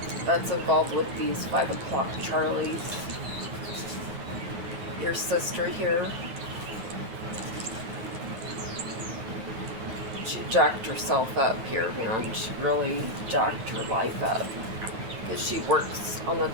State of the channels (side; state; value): left; late; 9.0 ms